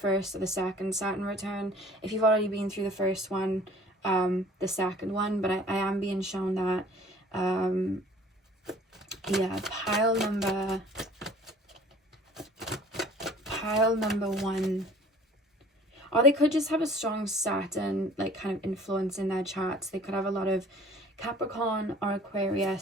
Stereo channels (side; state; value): both; normal; correlation 0.51